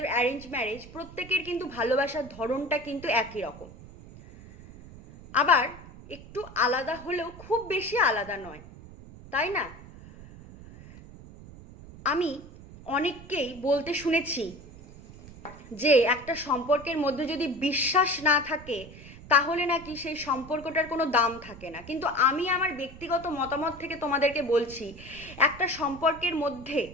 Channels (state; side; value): noise; right; rumble, 17 dB below the sound